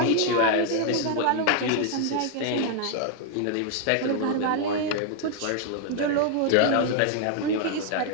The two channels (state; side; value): different; both; correlation 0.00